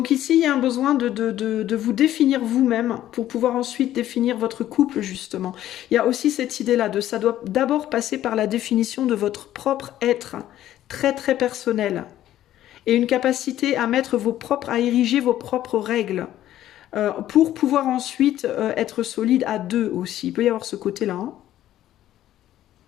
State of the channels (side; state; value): right; quieter; 12.8 dB